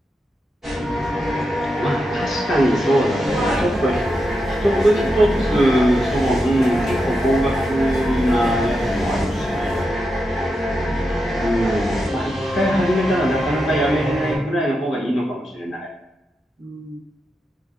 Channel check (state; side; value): normal; both; correlation 0.86